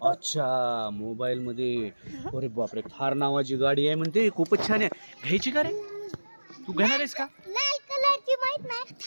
अच्छा, मोबाईल मध्ये. अरे बापरे, थार नावाची गाडी आहे म्हणते, खूपच छान आहे. घ्यायची का रे? तू घेणार आहेस का? लाल कलरची माहित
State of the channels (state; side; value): inverted; both; correlation -1.00